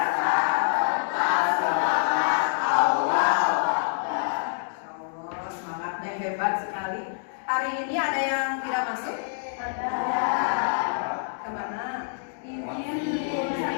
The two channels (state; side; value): silent; right; digital silence